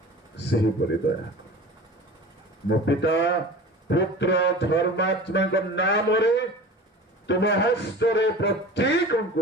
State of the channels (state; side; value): normal; both; correlation 0.37